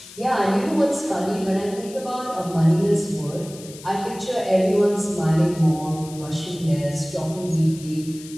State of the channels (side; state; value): left; noise; hiss, 17 dB below the sound